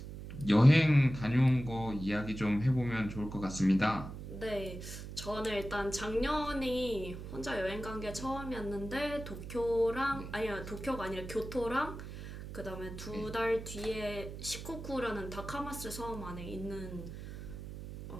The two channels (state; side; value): noise; right; hum, 10 dB below the sound